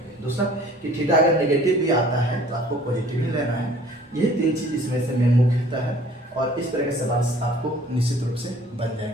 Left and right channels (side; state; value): both; normal; correlation 0.52